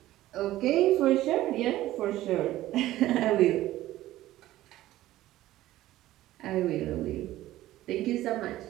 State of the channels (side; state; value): left; quieter; 15.2 dB